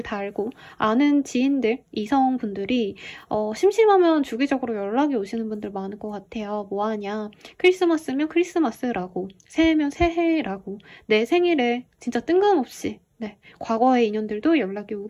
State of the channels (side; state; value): both; identical; correlation 1.00